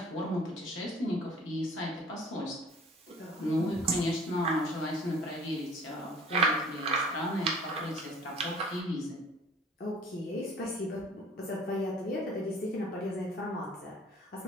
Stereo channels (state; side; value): normal; both; correlation 0.49